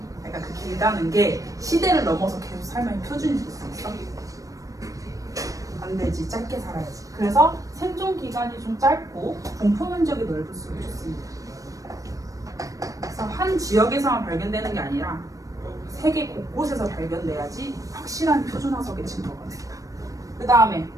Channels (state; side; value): late; left; 0.16 ms